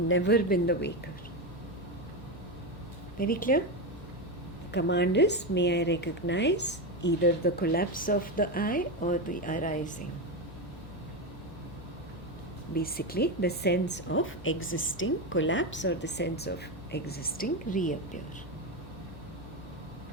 been the waker. Very clear? The command is, may I recognize either the collapse of the eye or the arising. Basically, the sense of existing collapse or the sense of existing reappear.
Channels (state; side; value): normal; both; correlation 0.13